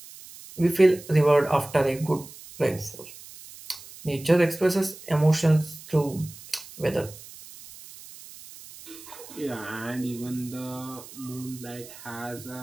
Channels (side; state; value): right; noise; hiss, 17 dB below the sound